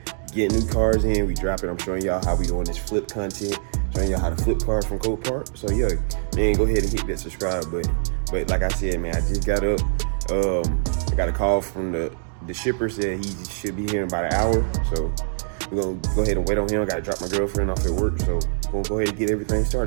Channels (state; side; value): silent; left; digital silence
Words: getting new cars in, we dropping. I'm showing y'all how we doing this flip content, showing y'all how to flip cars from Copart. So yeah, man, go ahead and hit that subscribe button. But like I said, man, I just got up. I got a call from the shipper, said he should be here in about an hour, so we're gonna go ahead and wait on him. I gotta drop my girlfriend off at work, so we're gonna go ahead and get everything